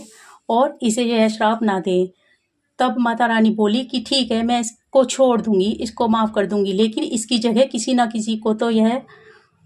और इसे यह श्राप ना दें। तब माता रानी बोली कि ठीक है, मैं इसको छोड़ दूंगी, इसको माफ़ कर दूंगी, लेकिन इसकी जगह किसी ना किसी को तो यह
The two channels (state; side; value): identical; both; correlation 1.00